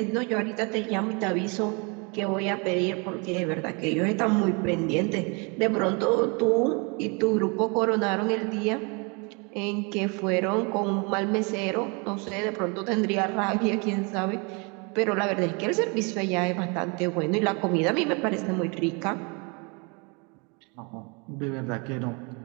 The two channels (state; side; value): quieter; left; 31.8 dB